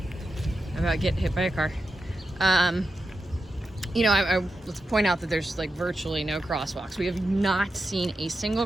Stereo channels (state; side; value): normal; both; correlation 0.89